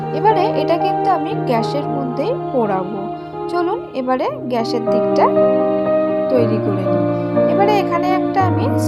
এবারে এটা কিন্তু আমি গ্যাসের মধ্যেই পোড়াবো। চলুন এবারে গ্যাসের দিকটা তৈরি করে নিই। এবারে এখানে একটা আমি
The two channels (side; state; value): both; identical; correlation 1.00